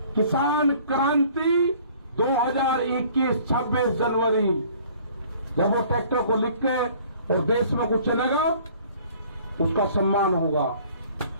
किसान क्रांति 2021 26 जनवरी। जब वो ट्रैक्टर को लिख के और देश में कुछ चलेगा, उसका सम्मान होगा।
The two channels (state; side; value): inverted; both; correlation -0.54